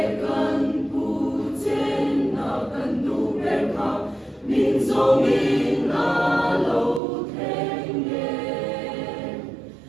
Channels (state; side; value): drops out; left; at 7.0 s